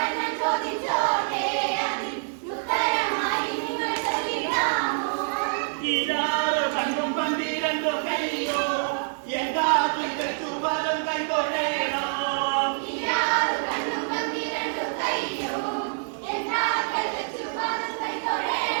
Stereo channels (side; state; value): left; silent; digital silence